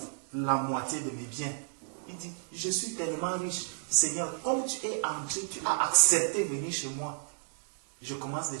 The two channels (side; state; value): left; silent; 57 dB below the other